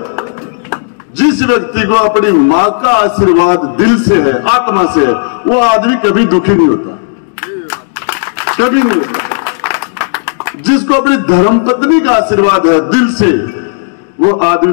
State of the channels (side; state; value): right; silent; digital silence